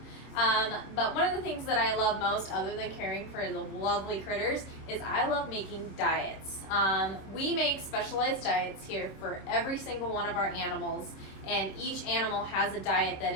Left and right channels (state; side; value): late; right; 26 ms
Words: But one of the things that I love most, other than caring for the lovely critters, is I love making diets. We make specialized diets here for every single one of our animals, and each animal has a diet that